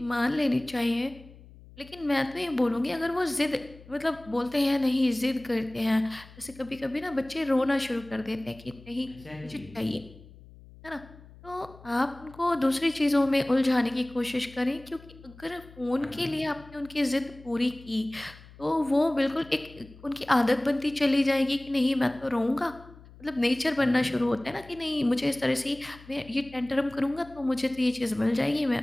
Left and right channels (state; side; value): noise; left; hum, 21 dB below the sound